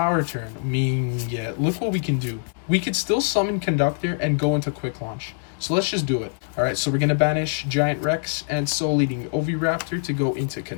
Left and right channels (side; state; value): right; silent; digital silence